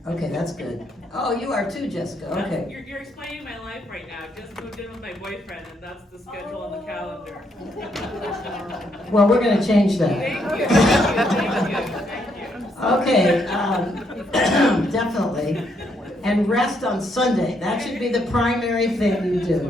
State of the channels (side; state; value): both; normal; correlation 0.74